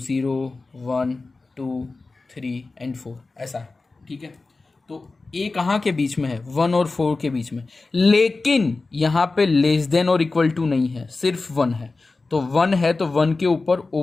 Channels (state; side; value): quieter; right; 3.6 dB